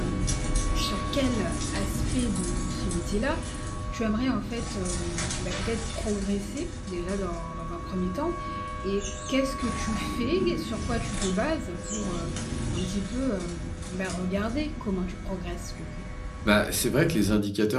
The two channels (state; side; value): identical; both; correlation 1.00